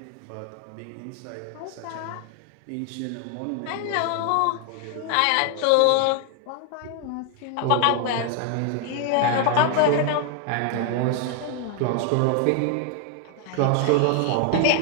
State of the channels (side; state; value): both; different; correlation 0.00